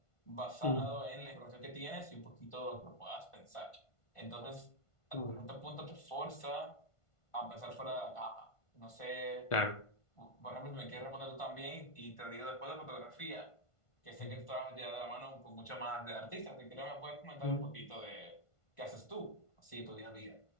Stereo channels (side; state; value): right; late; 1.5 ms